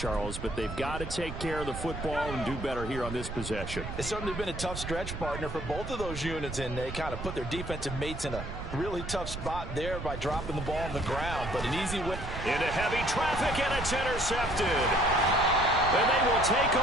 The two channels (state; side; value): noise; right; rumble, 7 dB below the sound